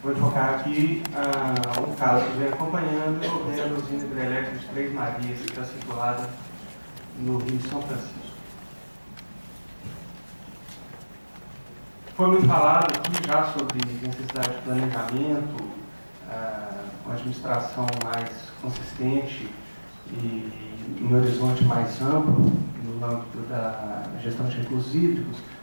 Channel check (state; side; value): inverted; both; correlation -1.00